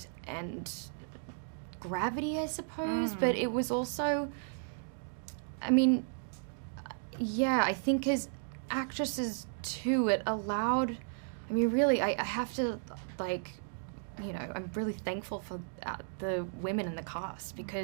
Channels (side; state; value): left; silent; digital silence